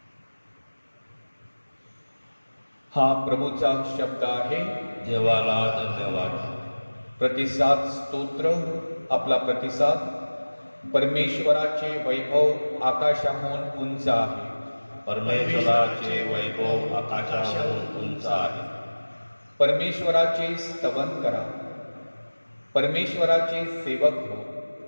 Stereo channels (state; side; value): inverted; both; correlation -1.00